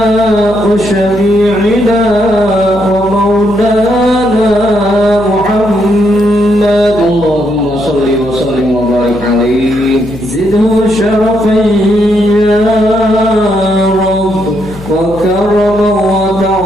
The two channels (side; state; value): left; noise; hum, 15 dB below the sound